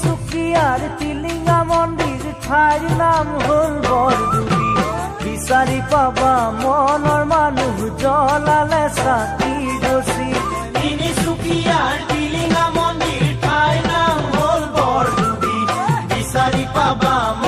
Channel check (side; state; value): both; identical; correlation 1.00